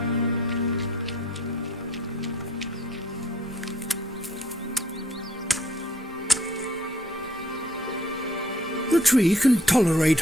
The tree can tolerate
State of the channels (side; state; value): both; normal; correlation 0.61